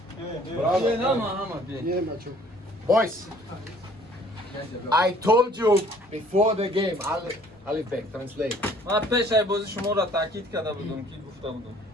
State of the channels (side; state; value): both; normal; correlation 0.56